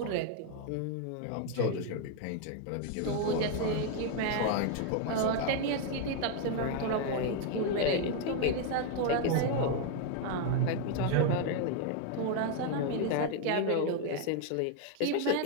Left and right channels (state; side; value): different; both; correlation 0.01